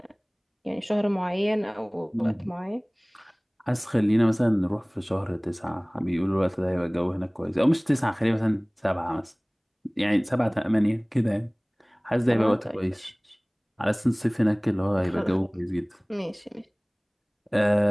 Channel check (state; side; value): identical; both; correlation 1.00